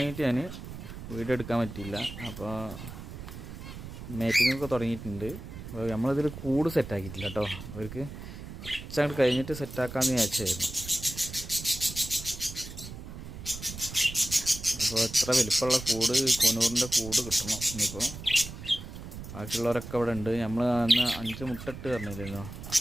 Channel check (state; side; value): noise; right; rumble, 11 dB below the sound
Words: ഞാൻ വീഡിയോ എടുക്കാൻ പറ്റിയില്ല. അപ്പോൾ മേറ്റിങ്ങൊക്കെ തുടങ്ങിയിട്ടുണ്ട്. അപ്പോൾ നമ്മളിതിൽ കൂട് സെറ്റാക്കിയിട്ടില്ല കേട്ടോ. അവർക്ക് കുറച്ചങ്ങോട്ട് കഴിഞ്ഞിട്ട് സെറ്റാക്കാമെന്ന് വിചാരിച്ചായിരുന്നു. അപ്പോൾ എത്ര വലിപ്പമുള്ള കൂട്, കൊനൂറിൻ്റെ കൂട് കിട്ടണം ഇനിയിപ്പോൾ. ബാക്കിയുള്ളവരൊക്കെ ഇവിടെ ഉണ്ട്. നമ്മൾ അന്ന് 5 മുട്ട ഇട്ട് പറഞ്ഞില്ലല്ലോ,